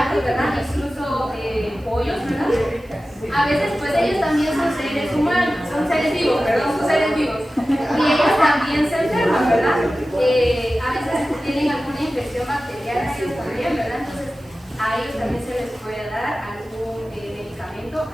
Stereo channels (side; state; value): right; noise; hiss, 30 dB below the sound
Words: ¿verdad? Incluso pollos, ¿verdad? A veces pues ellos también son seres humanos, son seres vivos, perdón, son seres vivos. Y ellos también se enferman, ¿verdad? A veces tienen alguna infección bacteriana, ellos también, ¿verdad? Entonces a ellos también se les puede dar algún medicamento